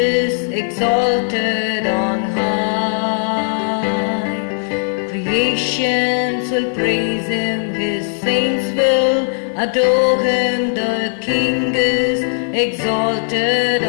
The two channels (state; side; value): silent; right; 68 dB below the other